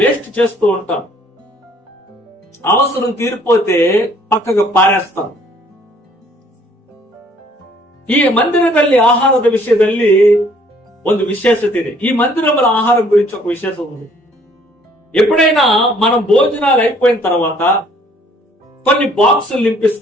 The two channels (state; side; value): normal; both; correlation 0.60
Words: చేస్తూ ఉంటాం. అవసరం తీరిపోతే పక్కకు పారేస్తాం. ಈ ಮಂದಿರದಲ್ಲಿ ಆಹಾರದ ವಿಷಯದಲ್ಲಿ ಒಂದು ವಿಶೇಷತೆ ಇದೆ. ಈ ಮಂದಿರముల ఆహారం గురించి ఒక విశేషం ఉంది. ఎప్పుడైనా మనం భోజనాలు అయిపోయిన తర్వాత కొన్ని బాక్సులు